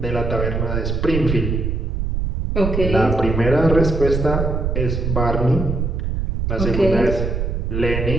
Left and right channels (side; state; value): right; noise; rumble, 1 dB below the sound